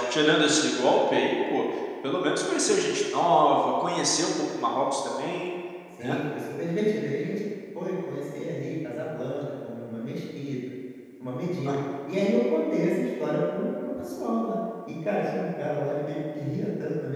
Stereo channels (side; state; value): both; identical; correlation 1.00